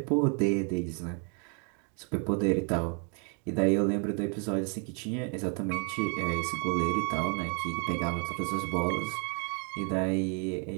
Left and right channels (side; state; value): left; quieter; 38.7 dB